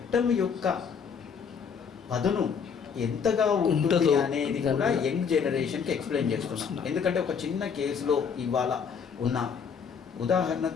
యొక్క పదును ఎంతగా ఉంటుంది అనేది కూడా యంగ్ జనరేషన్కి ఎక్స్ప్లెయిన్ చేస్తున్నాం. ఎందుకంటే ఒక చిన్న కేసులో ఇవాళ ఉన్న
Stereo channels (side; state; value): right; quieter; 6.5 dB